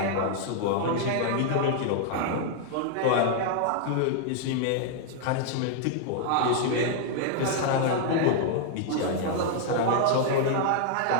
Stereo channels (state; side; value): different; both; correlation 0.00